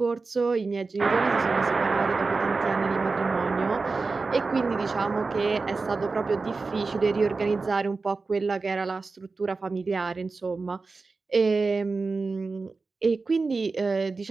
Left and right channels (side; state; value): left; quieter; 4.0 dB